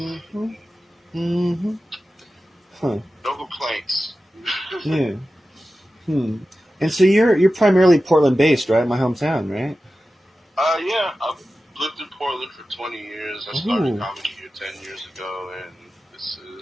Huh. No complaints. Yeah. And so you're primarily Portland based, right? My hometown, right? Yeah. I've lived in Portland for 20 years. I started comedy here 10 years ago, and this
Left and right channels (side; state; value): both; normal; correlation 0.94